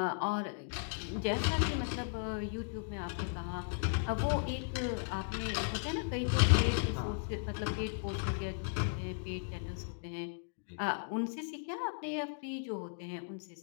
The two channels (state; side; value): silent; right; digital silence